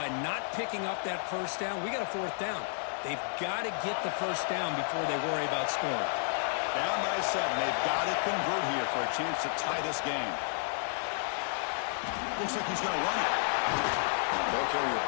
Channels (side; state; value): right; silent; digital silence